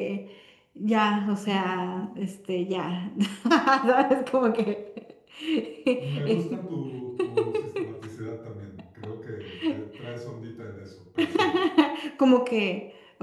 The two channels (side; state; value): both; identical; correlation 1.00